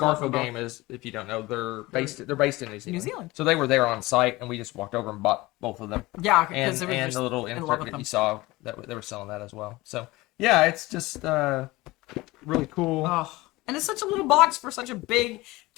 Game is, if you don't know, they're based in New Zealand. New Zealand. So they were there on site, and we just walked over and bought both of them. Yeah, and the little insert that you saw that they were selling that as well. So yeah, it's just really cool. Oh, and it's such a little box for such a big,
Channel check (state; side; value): quieter; right; 20.5 dB